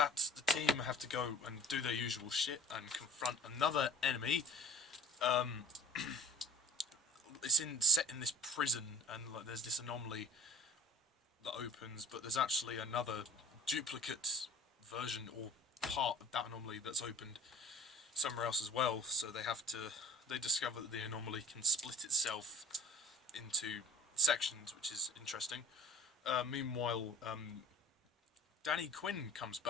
the team have to go and do their usual shit and confront another enemy. It's set in this prison, and like, there's this anomaly that opens, but there's actually another duplicate version or part of that anomaly that's opened somewhere else as well. So they discover that the anomaly can split itself into sections, which is interesting. Meanwhile, Danny Quinn comes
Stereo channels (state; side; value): normal; both; correlation 0.42